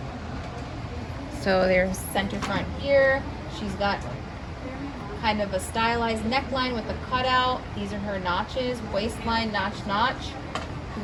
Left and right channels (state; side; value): identical; both; correlation 1.00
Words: So there's center front here. She's got kind of a stylized neckline with a cutout. These are her notches, waistline, notch. You